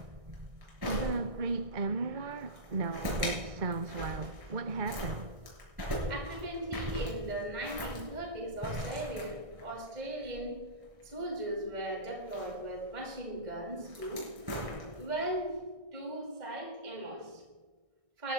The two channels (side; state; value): left; late; 1.6 ms